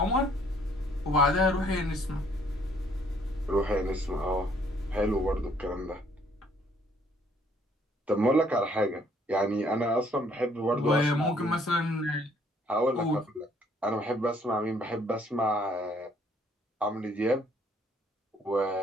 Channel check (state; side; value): normal; both; correlation 0.64